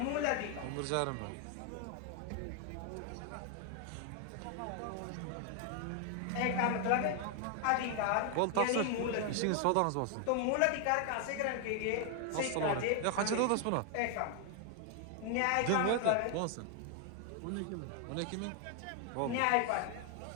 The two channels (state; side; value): different; both; correlation 0.00